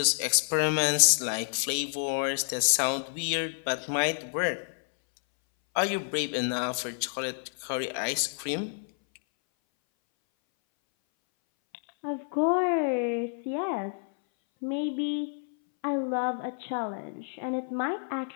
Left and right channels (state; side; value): silent; right; 59 dB below the other